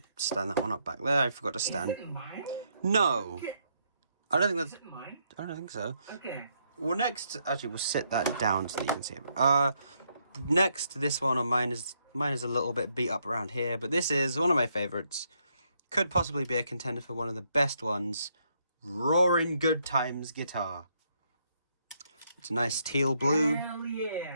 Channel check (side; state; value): both; inverted; correlation -0.75